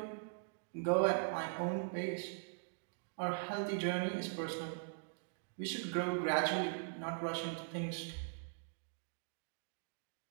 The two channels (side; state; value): left; silent; digital silence